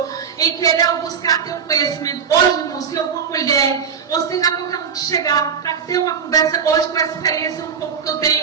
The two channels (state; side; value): quieter; left; 6.8 dB